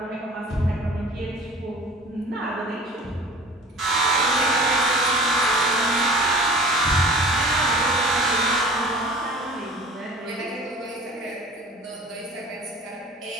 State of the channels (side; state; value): both; normal; correlation 0.44